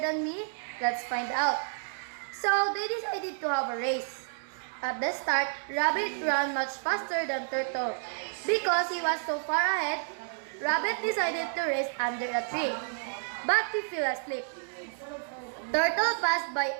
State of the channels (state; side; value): silent; left; digital silence